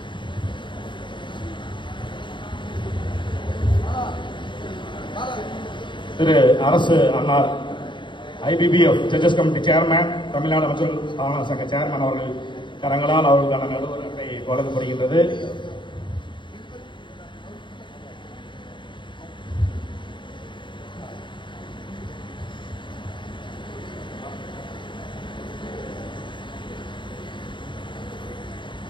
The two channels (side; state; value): right; late; 0.23 ms